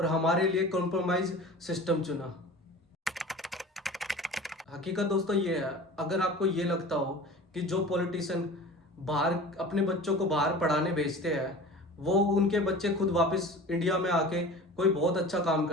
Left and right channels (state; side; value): normal; both; correlation 0.38